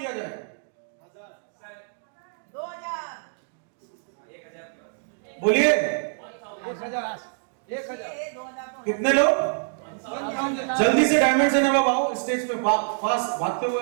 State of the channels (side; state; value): left; silent; digital silence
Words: जाए? 2000 बोलिए 1000 कितने लोग? जल्दी से डायमंड से नवाब आओ स्टेज पे, फास्ट भागते हुए